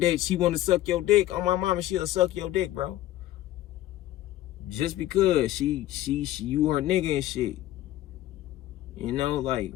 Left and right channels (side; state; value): right; quieter; 14.4 dB